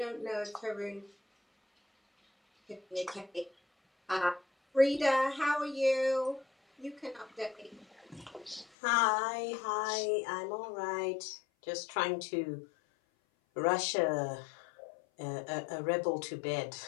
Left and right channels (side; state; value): right; drops out; at 8.7 s